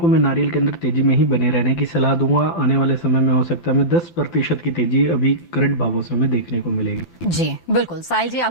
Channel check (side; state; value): right; late; 5.8 ms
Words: मैं नारियल के अंदर तेजी में ही बने रहने की सलाह दूंगा। आने वाले समय में हो सकता है हमें 10% की तेजी अभी करंट भावों से हमें देखने को मिलेगी। जी बिल्कुल, साहिल जी